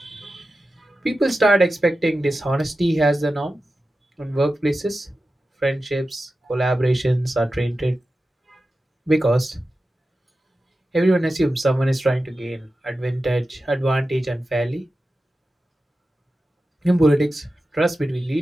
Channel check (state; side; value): normal; both; correlation 0.93